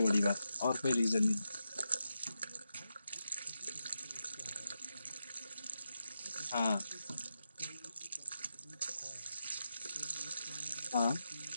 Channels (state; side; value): inverted; both; correlation -0.87